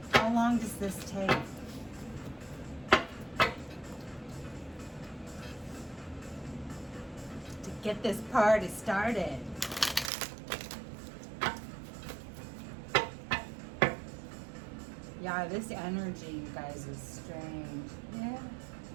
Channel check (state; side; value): drops out; left; at 10.1 s